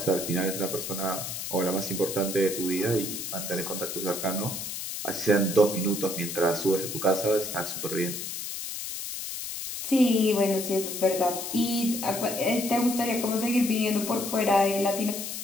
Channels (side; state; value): left; noise; hiss, 6 dB below the sound